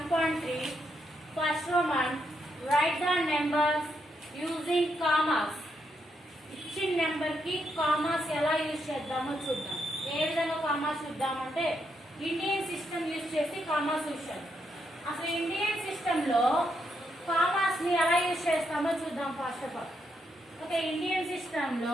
First Roman. Write the numbers using commas. ఇచ్చిన నెంబర్ కి కామాస్ ఎలా యూజ్ చేద్దామో చూద్దాం. ఏ విధంగా కామాస్ చూద్దామంటే ఇండియన్ సిస్టమ్ యూజ్ చేసి కామాస్ యూజ్ చేద్దాం. అసలు ఇండియన్ సిస్టమ్ లో కామాస్ ని ఎలా యూజ్ చేస్తామో చూద్దాం first of all. Okay, Indian system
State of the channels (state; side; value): normal; both; correlation 0.79